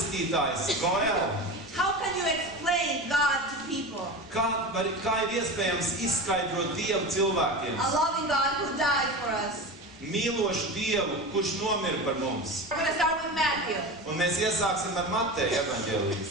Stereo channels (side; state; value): both; normal; correlation 0.27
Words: Goel. How can you explain God to people? Kā ir iespējams izskaidrot Dievu cilvēkiem? A loving God who died for us. Mīlošu Dievu, kurš nomira par mums. We're going to start with Matthew. Un mēs iesāksim ar Mateja evaņģēliju.